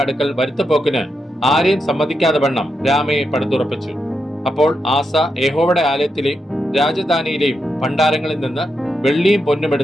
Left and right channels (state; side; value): normal; both; correlation 0.85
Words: അടുക്കൽ വരുത്തപ്പോക്കിന് ആരെയും സമ്മതിക്കാതെ വണ്ണം രാമയെ പടുത്തുറപ്പിച്ചു. അപ്പോൾ ആസ യഹോവയുടെ ആലയത്തിലെയും രാജധാനിയിലെയും ഭണ്ഡാരങ്ങളിൽ നിന്ന് വെള്ളിയും പൊന്നും